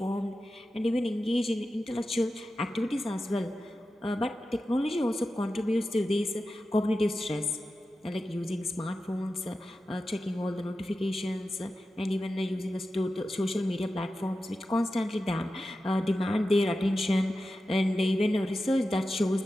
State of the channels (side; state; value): both; normal; correlation 0.92